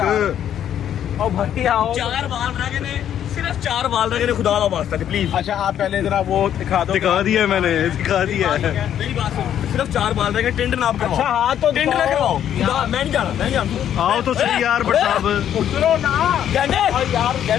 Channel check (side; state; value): right; quieter; 10.1 dB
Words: ओ भाई आओ। 4 बाल रह गए ने, सिर्फ 4 बाल रह गए ने, खुदा का वास्ता प्लीज। अच्छा आप पहले जरा वो दिखा दो। दिखा दिया मैंने, दिखा दिया। मेरी बात सुनो, सिर्फ 4 बाल रह गए, टिंड नाप करवाओ। अच्छा हाँ तो टिंड ना करवाओ। मैं नहीं जाना, मैं नहीं जाना। आओ तो सही यार भट्ट साहब। उतरो ना कहने यार,